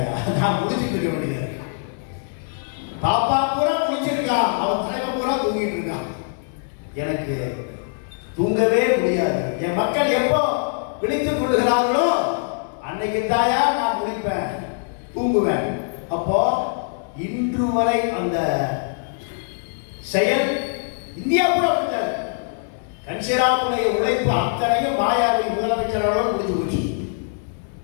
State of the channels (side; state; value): right; silent; digital silence